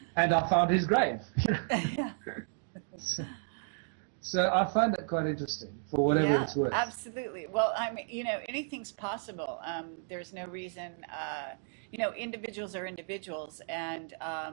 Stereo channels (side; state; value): left; silent; digital silence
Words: I found his grave. Yeah. So I find that quite interesting for whatever Yeah, it's worth. absolutely. Well, I mean, anything's possible. There's no reason, individuals are individuals, and